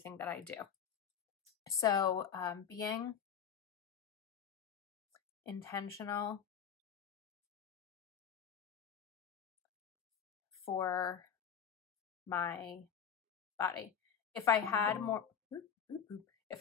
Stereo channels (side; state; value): right; quieter; 7.9 dB